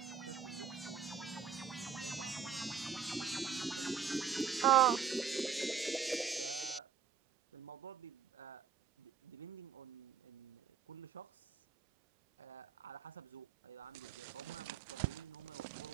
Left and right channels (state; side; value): quieter; left; 6.9 dB